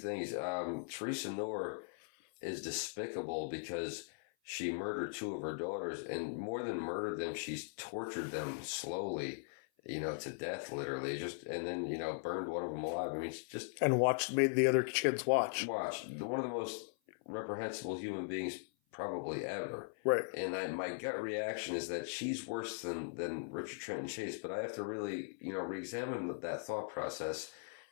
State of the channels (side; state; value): right; silent; 52 dB below the other